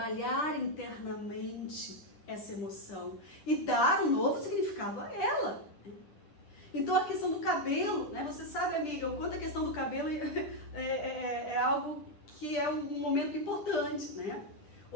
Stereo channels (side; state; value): right; late; 10 ms